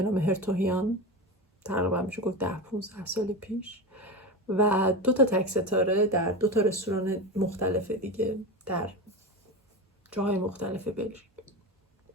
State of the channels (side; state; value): both; normal; correlation 0.23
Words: نام هرتوهیان، تقریبا میشه گفت 10-15 سال پیش، و 2 تا تک ستاره در 2 تا رستوران مختلف دیگه در جاهای مختلف بلژیک.